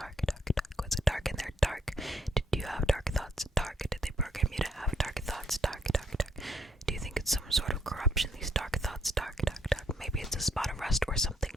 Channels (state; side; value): normal; both; correlation 0.71